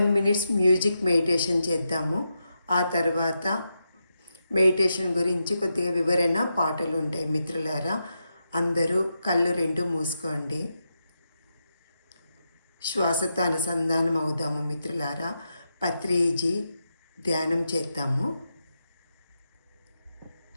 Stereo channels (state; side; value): inverted; both; correlation -0.86